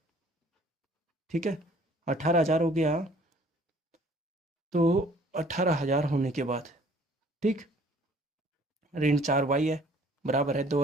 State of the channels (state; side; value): normal; both; correlation 0.56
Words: ठीक है, 18000 हो गया। तो 18000 होने के बाद, ठीक, ऋण 4y है बराबर है